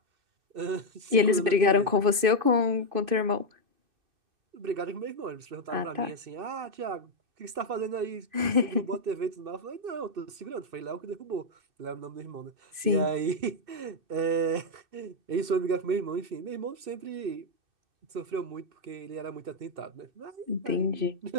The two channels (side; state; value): left; late; 2.5 ms